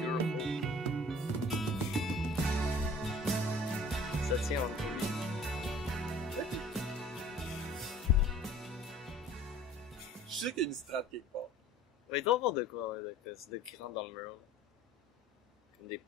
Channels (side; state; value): both; normal; correlation 0.48